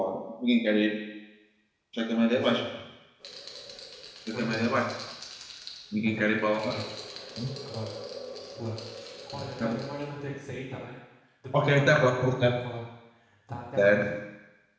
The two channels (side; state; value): both; identical; correlation 1.00